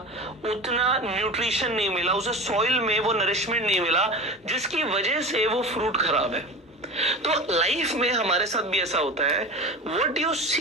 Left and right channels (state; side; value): normal; both; correlation 0.31